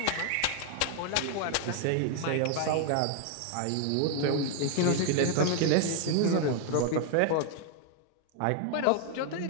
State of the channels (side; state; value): both; different; correlation 0.00